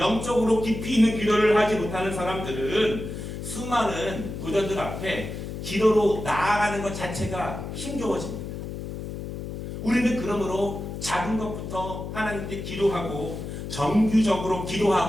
깊이 있는 기도를 하지 못하는 사람들은 수많은 도전들 앞에 기도로 나아가는 것 자체가 힘겨워집니다. 우리는 그러므로 작은 것부터 하나님께 기도하고, 정규적으로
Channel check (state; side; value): noise; left; hum, 7 dB below the sound